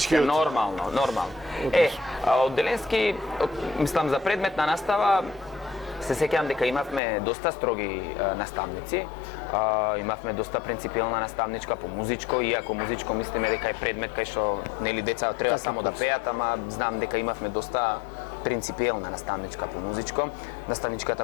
Нормално. Од Деленски, мислам за предметна настава, се сеќавам дека имавме доста строги наставници, имавме доста принципиелна наставничка по музичко, иако музичко мислиме дека е предмет кај што нели деца треба само да пеат, ама знам дека имавме доста принципиелна наставничка по музичко.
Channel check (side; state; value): right; drops out; at 7.0 s